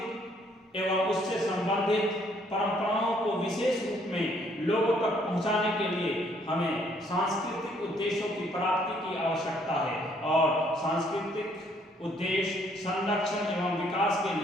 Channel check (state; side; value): normal; both; correlation 0.65